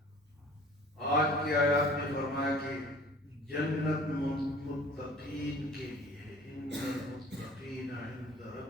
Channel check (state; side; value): normal; both; correlation 0.49